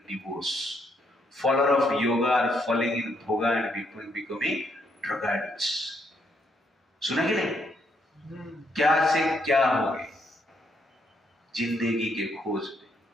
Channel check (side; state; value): both; normal; correlation 0.74